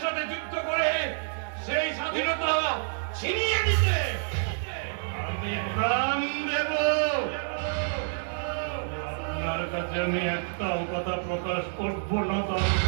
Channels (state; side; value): silent; left; digital silence